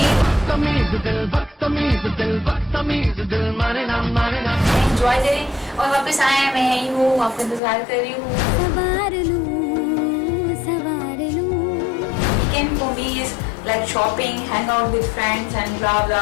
एंजॉय करें और वापस आए मैं यही हूँ, आपका इंतजार कर रही हूँ। Weekend for me is like shopping, hang out with friends and blah blah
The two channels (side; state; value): right; drops out; at 7.6 s